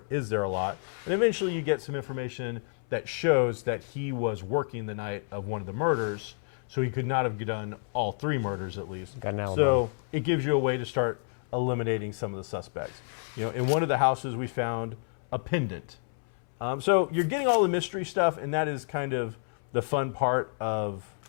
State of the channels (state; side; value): silent; right; 58 dB below the other